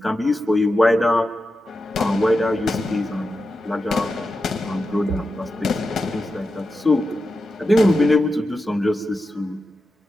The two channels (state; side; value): normal; both; correlation 0.90